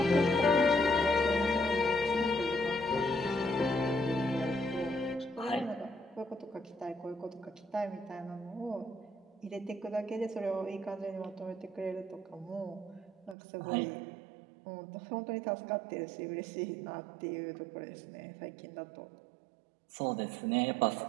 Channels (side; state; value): left; drops out; at 13.4 s